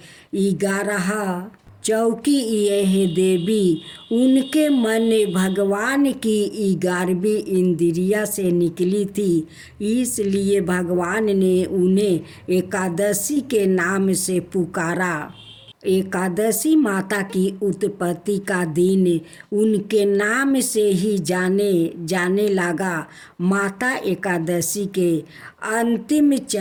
11। चौकी यह देवी, उनके मन भगवान की 11वीं इंद्रिया से निकली थी, इसलिए भगवान ने उन्हें एकादशी के नाम से पुकारा। एकादशी माता की उत्पत्ति का दिन उनके नाम से ही जाने लगा। माता एकादशी के अंतिम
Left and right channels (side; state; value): both; identical; correlation 1.00